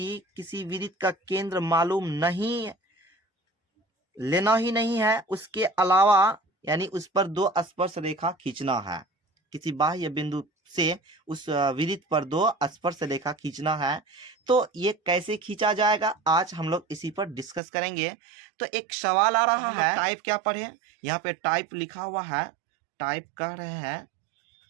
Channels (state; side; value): drops out; left; at 17.6 s